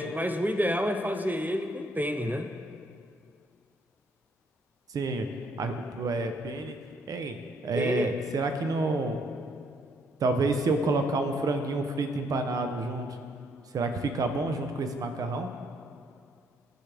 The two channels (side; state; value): both; normal; correlation 0.70